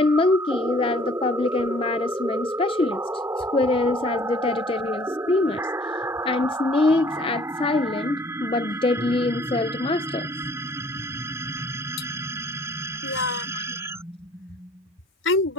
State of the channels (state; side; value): normal; both; correlation 0.56